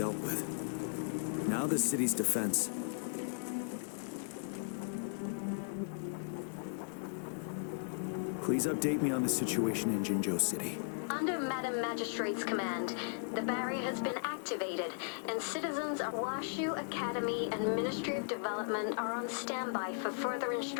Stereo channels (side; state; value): right; silent; digital silence